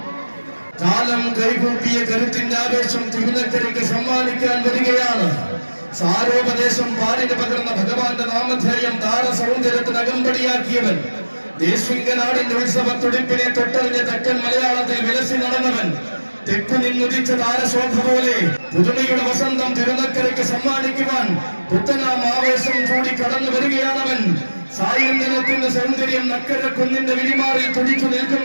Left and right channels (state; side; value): inverted; both; correlation -1.00